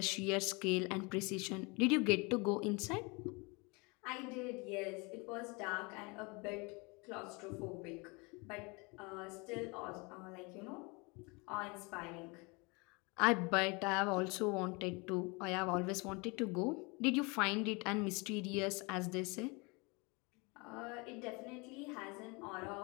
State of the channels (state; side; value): quieter; right; 28.3 dB